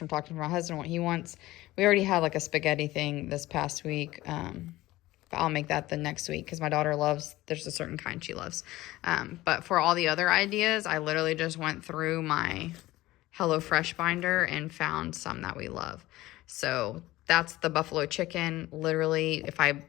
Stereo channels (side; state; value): right; quieter; 17.5 dB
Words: talking to my husband, what he wants. We already had like a spaghetti thing this past week. I'll make that the next week because my daughter there's a certain kind she loves. But for all the other ideas, I literally just went through my HelloFresh binder and found some that we love. So that's the buffalo chicken. Literally, if I,